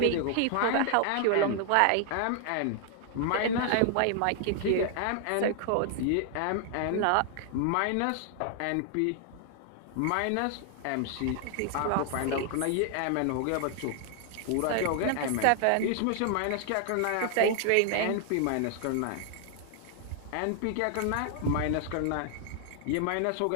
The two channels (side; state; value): both; different; correlation 0.00